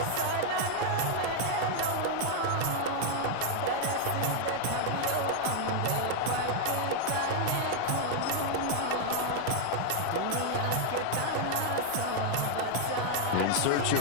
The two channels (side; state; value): both; different; correlation 0.00